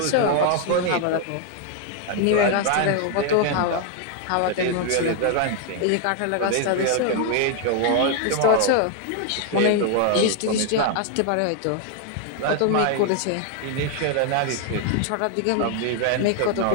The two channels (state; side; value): different; both; correlation 0.00